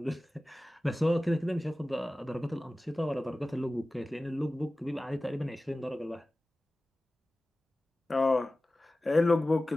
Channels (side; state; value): both; normal; correlation 0.97